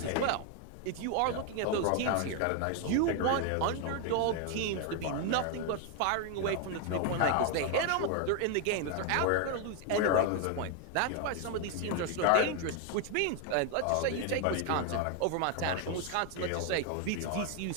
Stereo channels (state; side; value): different; both; correlation 0.00